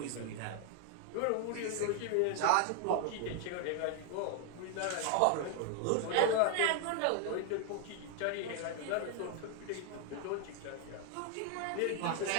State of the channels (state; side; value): different; both; correlation 0.00